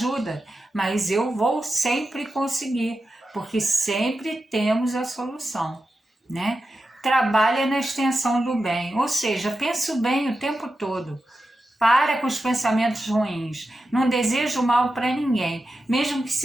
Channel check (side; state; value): both; normal; correlation 0.90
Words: mas eu vou sempre conseguir, porque sempre temos a solução, né? Trabalha na extensão do bem, ou seja, pensa o bem o tempo todo. Para com os pensamentos ruins. Não desejo mal para ninguém, mesmo que